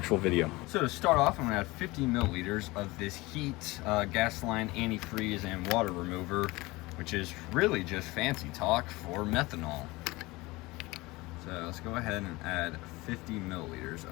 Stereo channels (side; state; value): right; quieter; 21.7 dB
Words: video. So to start off, I'm gonna add 50 milliliters of this heat, gas line, antifreeze, and water remover, which is really just fancy talk for methanol. So let's go ahead and add 50 milliliters